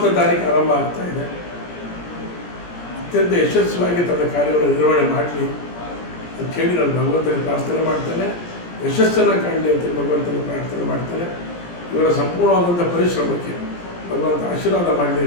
ತಾರೀಕು ಆರಂಭ ಆಗ್ತಾ ಇದೆ. ಅತ್ಯಂತ ಯಶಸ್ವಿಯಾಗಿ ತನ್ನ ಕಾರ್ಯವನ್ನು ನಿರ್ವಹಣೆ ಮಾಡಲಿ ಅಂತ ಹೇಳಿ ನಾನು ಭಗವಂತನಿಗೆ ಪ್ರಾರ್ಥನೆ ಮಾಡ್ತೇನೆ. ಯಶಸ್ಸನ್ನು ಕಾಣಲಿ ಅಂತೇಳಿ ಭಗವಂತನಿಗೆ ಪ್ರಾರ್ಥನೆ ಮಾಡ್ತೇನೆ. ಇವರ ಸಂಪೂರ್ಣವಾದಂಥ ಪರಿಶ್ರಮಕ್ಕೆ ಭಗವಂತ ಆಶೀರ್ವಾದ ಮಾಡಲಿ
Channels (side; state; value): right; late; 17 ms